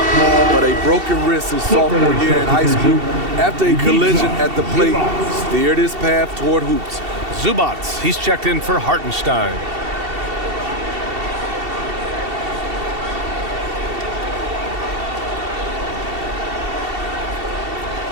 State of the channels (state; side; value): late; left; 2.7 ms